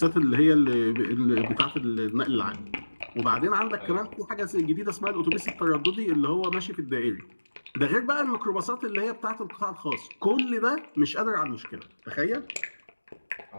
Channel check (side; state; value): both; inverted; correlation -1.00